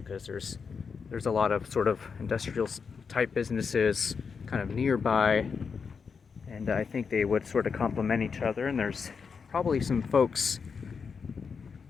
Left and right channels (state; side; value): quieter; right; 5.7 dB